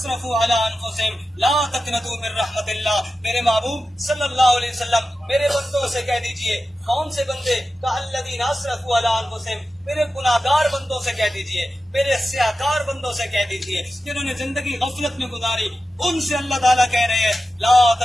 علی انفسہم لا تقنطوا من رحمت اللہ۔ میرے محبوب صلی اللہ علیہ وسلم میرے بندوں سے کہہ دیجئے، کون سے بندے؟ کہ الذین اسرفوا علی انفسہم، میرے گناہگار بندوں سے کہہ دیجئے، میرے سیاہکار بندوں سے کہہ دیجئے، جنہوں نے زندگی غفلت میں گزاری، ان سے اللہ تعالیٰ کہہ رہے ہیں لا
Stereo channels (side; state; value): both; normal; correlation 0.93